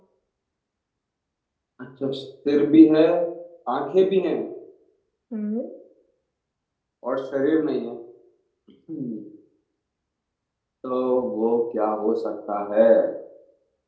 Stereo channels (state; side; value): identical; both; correlation 1.00